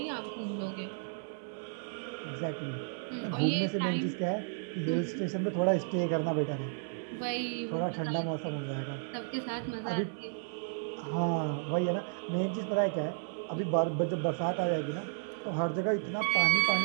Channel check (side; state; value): left; silent; 56 dB below the other